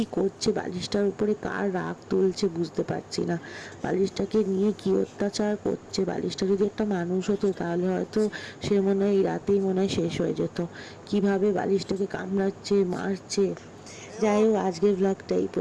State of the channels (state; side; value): identical; both; correlation 1.00